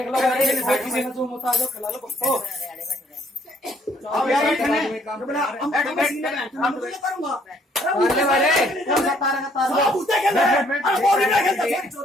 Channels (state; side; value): normal; both; correlation 0.65